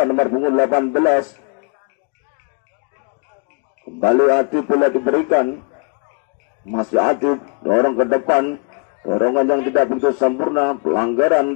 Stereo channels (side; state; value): right; quieter; 36.3 dB